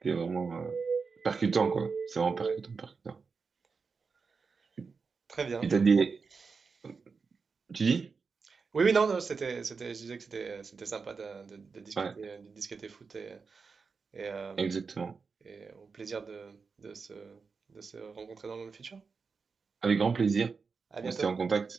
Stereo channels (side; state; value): left; quieter; 5.0 dB